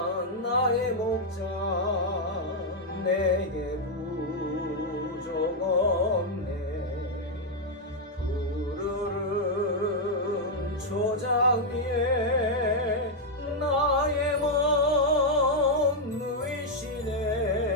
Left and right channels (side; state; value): both; normal; correlation -0.01